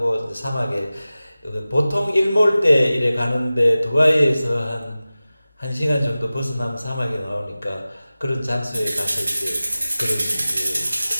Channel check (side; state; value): both; inverted; correlation -0.96